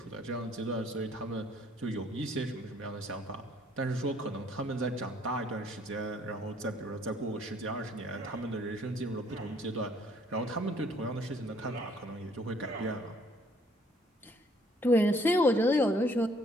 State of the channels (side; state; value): both; normal; correlation 0.63